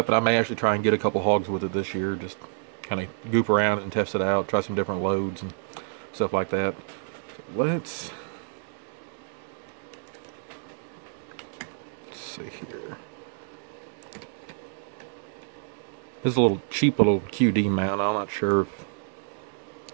and I may actually try and get a couple hogs with it this year. Just kind of goop around and test it out, try some different loads and stuff like that. Let's see here. This is a little cheap little QD mount. I'm not sure if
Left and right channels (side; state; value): left; silent; digital silence